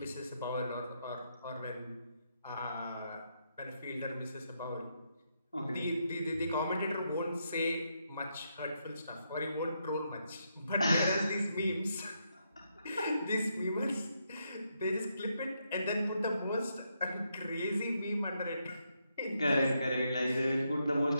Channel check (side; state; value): both; inverted; correlation -0.79